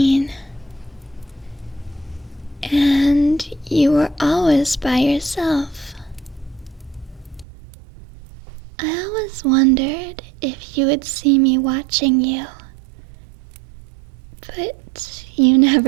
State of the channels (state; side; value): drops out; left; at 7.5 s